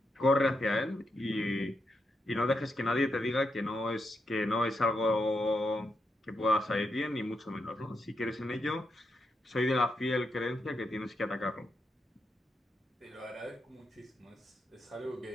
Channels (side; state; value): both; normal; correlation 0.83